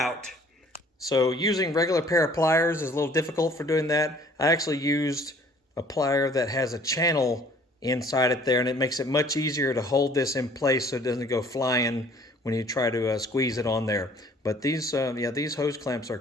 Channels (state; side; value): normal; both; correlation 0.55